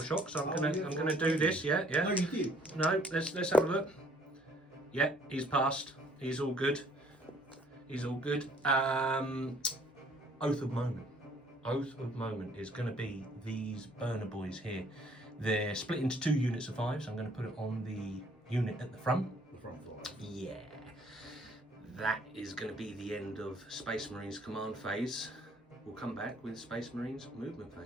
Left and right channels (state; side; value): normal; both; correlation 0.61